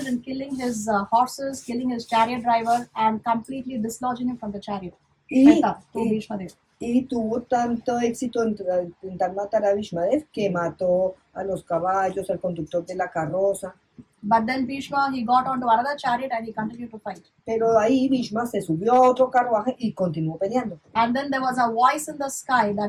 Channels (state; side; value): identical; both; correlation 1.00